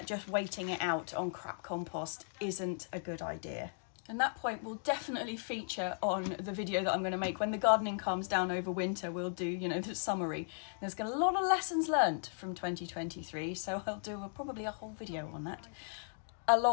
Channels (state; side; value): silent; right; digital silence